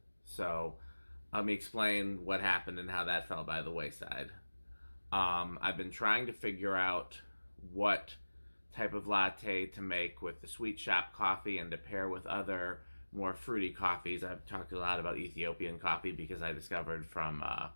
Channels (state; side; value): inverted; both; correlation -1.00